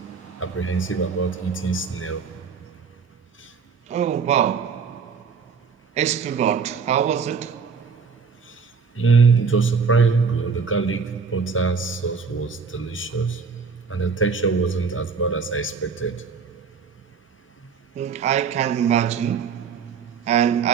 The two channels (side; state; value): left; quieter; 5.6 dB